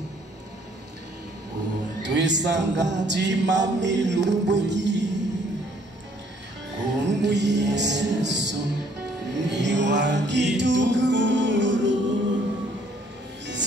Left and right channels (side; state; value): both; normal; correlation 0.63